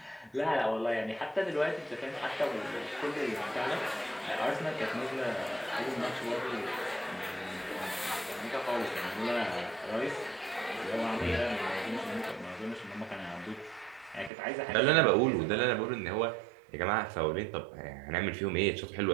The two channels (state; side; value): drops out; left; at 14.3 s